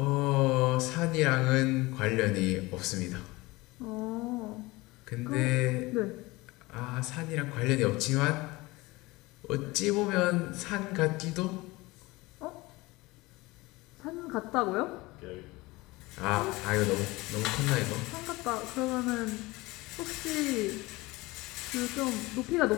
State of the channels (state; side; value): quieter; right; 21.6 dB